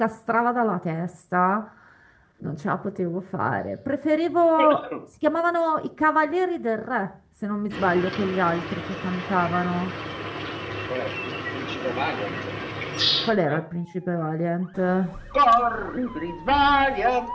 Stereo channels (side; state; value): both; identical; correlation 1.00